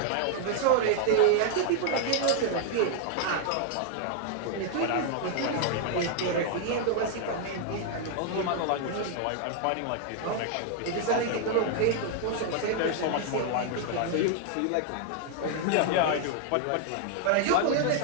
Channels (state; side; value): different; both; correlation 0.00